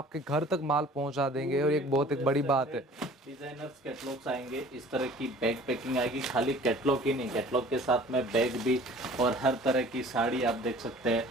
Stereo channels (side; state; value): both; normal; correlation 0.48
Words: घर तक माल पहुंचा देंगे, और एक बहुत एक बड़ी बात है। डिजाइनर्स कैटलॉग्स आएंगे, इस तरह की बैग पैकिंग आएगी, खाली कैटलॉग ही नहीं, कैटलॉग के साथ में बैग भी, और हर तरह की साड़ी आप देख सकते